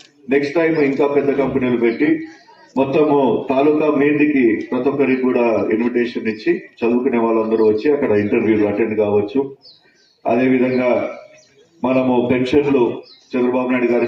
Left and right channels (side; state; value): both; identical; correlation 1.00